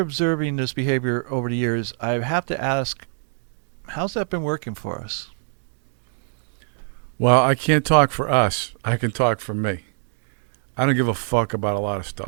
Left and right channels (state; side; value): silent; left; 63 dB below the other